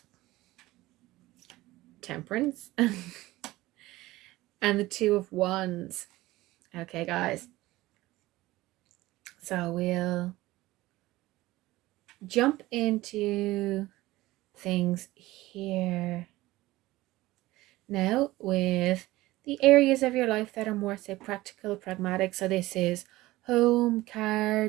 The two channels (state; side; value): quieter; left; 18.1 dB